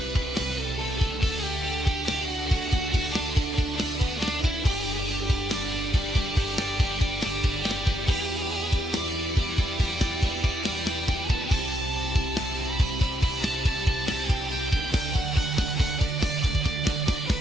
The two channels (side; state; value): both; normal; correlation 0.76